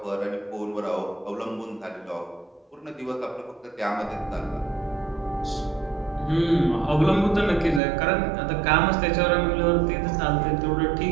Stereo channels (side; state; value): left; drops out; at 7.8 s